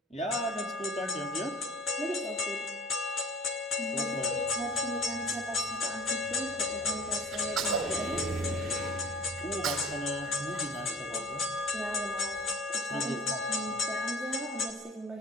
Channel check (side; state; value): both; normal; correlation 0.45